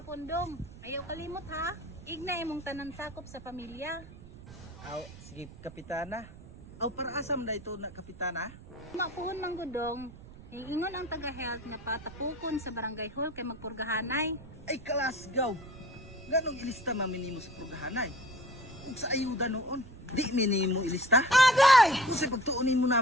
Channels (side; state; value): right; noise; rumble, 17 dB below the sound